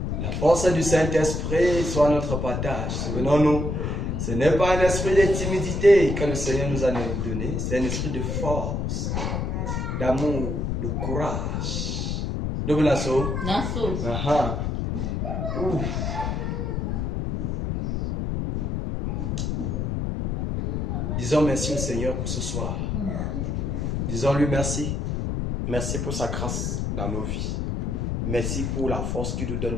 La force du Saint-Esprit soit notre partage. Souvenons-nous, ce n'est pas un esprit de timidité que le Seigneur nous a donné, c'est un esprit de force, d'amour, de courage. Nous venons. Nassau. Aha. Ouh. Disons merci au Seigneur pour ce soir. Disons-lui merci. Merci pour sa grâce dans nos vies. Merci pour la force qu'il nous donne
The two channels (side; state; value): left; noise; rumble, 1 dB below the sound